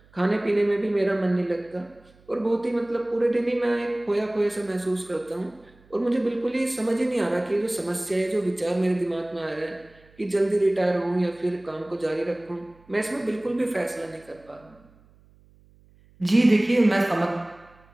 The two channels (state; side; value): noise; right; hum, 29 dB below the sound